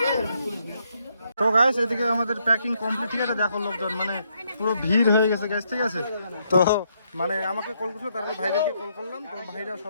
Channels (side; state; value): both; inverted; correlation -0.75